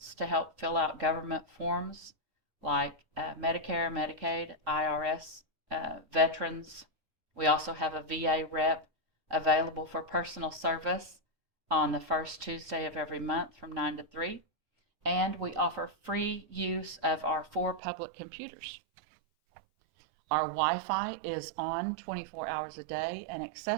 to help fill out government forms like Medicare, Medicaid, IRS, veterans. We also have a VA rep available for personal service on the first Tuesday of every month from 9 to 3. And we offer free use of our 4 public computers. Our Wi-Fi is on 24 hours a day and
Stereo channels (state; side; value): drops out; left; at 17.8 s